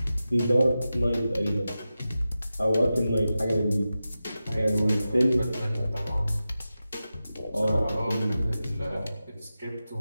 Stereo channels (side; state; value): both; inverted; correlation -0.93